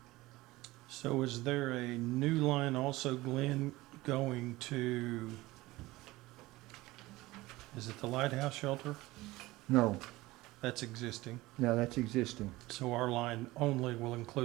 So is there a new line also, Glenn, going to, is it the Lighthouse Shelter? No, That's existing. no, that's existing. So our line only will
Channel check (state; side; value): quieter; left; 19.3 dB